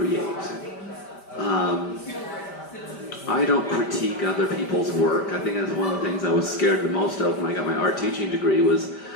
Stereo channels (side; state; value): right; late; 5.1 ms